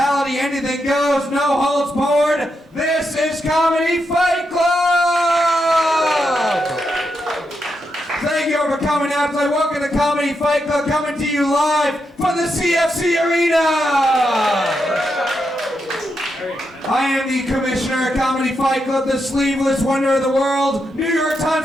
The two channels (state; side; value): normal; both; correlation 0.84